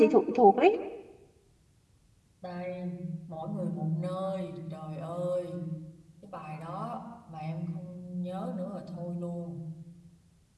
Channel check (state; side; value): identical; both; correlation 1.00